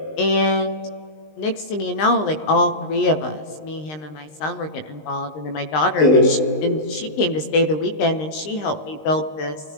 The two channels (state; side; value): late; right; 20 ms